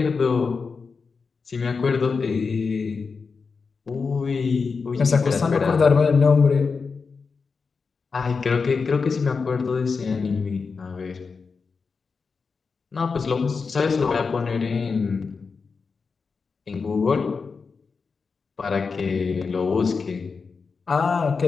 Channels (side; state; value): right; quieter; 5.0 dB